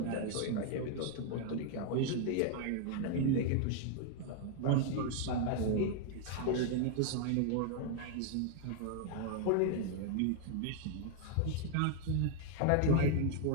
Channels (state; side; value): different; both; correlation 0.00